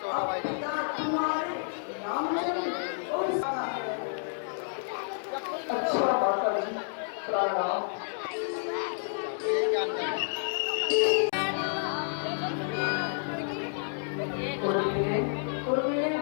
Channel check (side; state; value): right; silent; digital silence